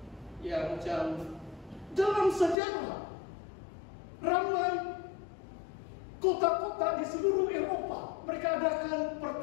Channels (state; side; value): drops out; right; at 2.6 s